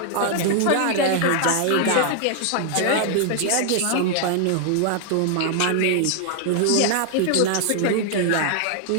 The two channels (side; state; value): both; different; correlation 0.00